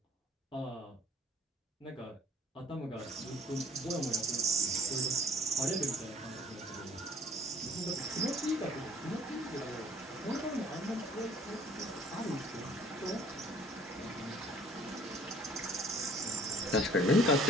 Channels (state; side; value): normal; both; correlation 0.53